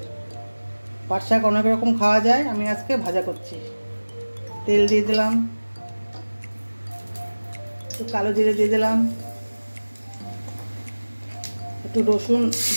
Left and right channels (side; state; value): both; inverted; correlation -1.00